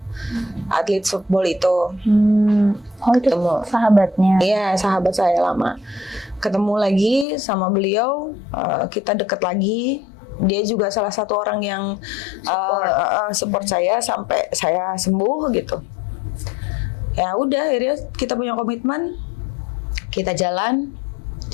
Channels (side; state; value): right; drops out; at 7.2 s